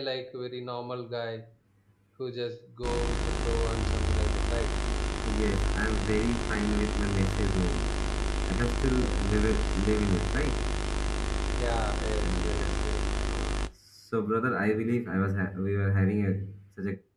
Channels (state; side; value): identical; both; correlation 1.00